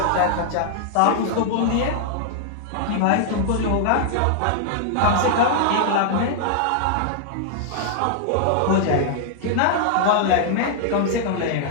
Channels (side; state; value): both; different; correlation -0.01